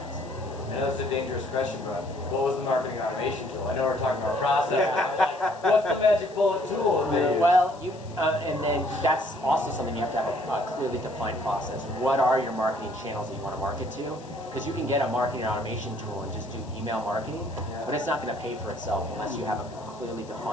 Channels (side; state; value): left; noise; hiss, 24 dB below the sound